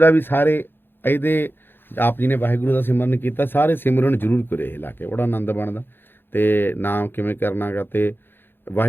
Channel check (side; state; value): right; late; 0.10 ms